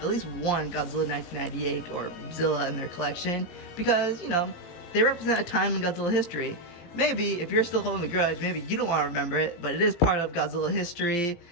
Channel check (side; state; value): right; late; 17 ms